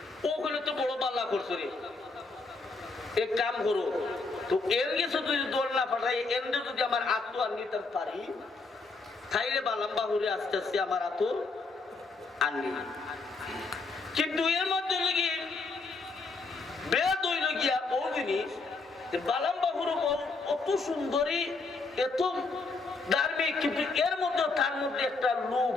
ও হলে তো বড় বাল্লা করছো রে, এক কাম করো তো এর গেছে যদি দৌড় না পাঠাই এমনি যদি আমার আত্ম আর নিতে পারি তাইলে বালাম্বাহুরে আস্তে আস্তে আমার আত্ম আনলি, কিন্তু এর মধ্যে লেগে বেদ হইল গিয়া ও জিনিস বালাম্বাহুর অত সুন্দরী এত ধার্মিক, কিন্তু এর মধ্যে তার মধ্যে একটা লোভ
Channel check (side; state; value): right; quieter; 3.9 dB